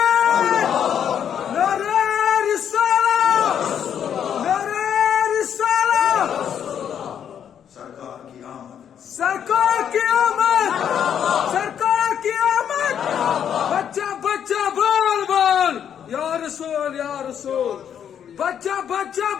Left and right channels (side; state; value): right; quieter; 8.8 dB